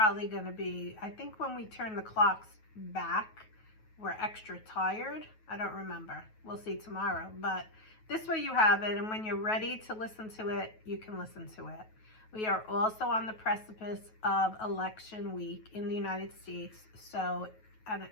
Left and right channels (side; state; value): right; late; 9.3 ms